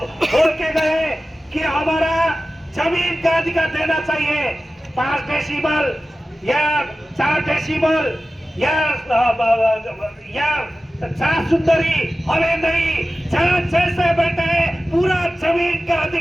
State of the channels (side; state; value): both; normal; correlation 0.95